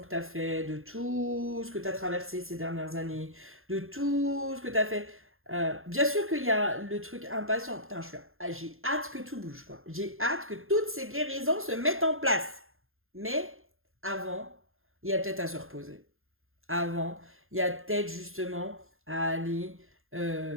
tu as fait, de tout ce que tu as traversé ces dernières années, de tout ce que tu as fait. Bien sûr qu'il y a le truc impatient. Putain, j'ai hâte que tout bouge, quoi. J'ai hâte que toutes ces guérisons se mettent en place. Mais avant, il y a peut-être à se reposer. Avant, il y a peut-être justement à aller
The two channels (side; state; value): left; late; 0.60 ms